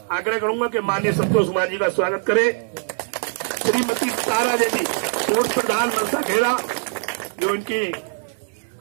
आग्रह करूंगा कि माननीय संतोष कुमार जी का स्वागत करें। श्रीमती तारा देवी पूर्व प्रधान मनसा खेड़ा, जो इनकी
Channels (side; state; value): left; silent; digital silence